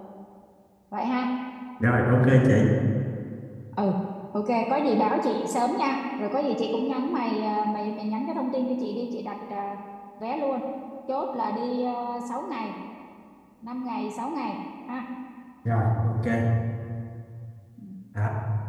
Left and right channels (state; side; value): identical; both; correlation 1.00